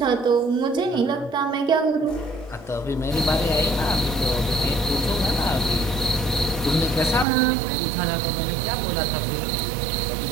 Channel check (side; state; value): left; drops out; at 7.2 s